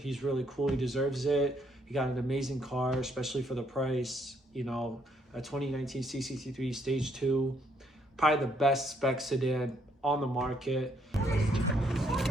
really cool. He deserves it. He got an amazing car, especially for the price. You know, a 2019 C63 Stage 2. Probably the best spec sedan on the market.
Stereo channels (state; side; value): normal; both; correlation 0.71